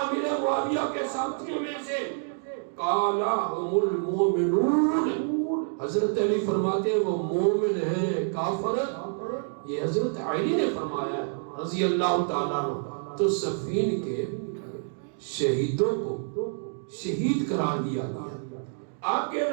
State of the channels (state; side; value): silent; left; digital silence